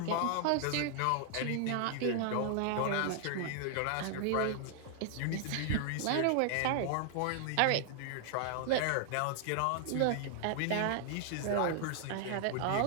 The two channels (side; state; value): both; different; correlation 0.00